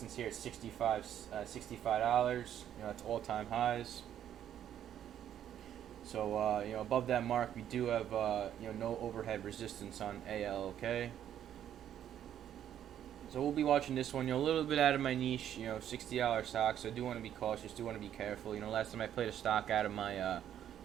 here at $65. It's all-time highs. So above that mark, we do have no overhead resistance on ALK. So we'll be watching this one. A little bit out of my niche. $60 stock. So I do want to be cautious. Do want to be careful. Last time I played a stock out of my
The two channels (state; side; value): quieter; left; 10.4 dB